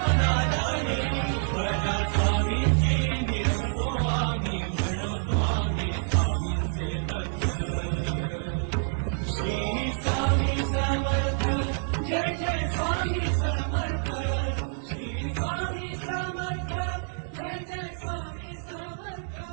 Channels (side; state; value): left; silent; digital silence